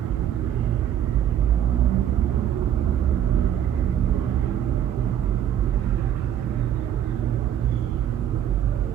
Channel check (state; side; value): quieter; left; 10.1 dB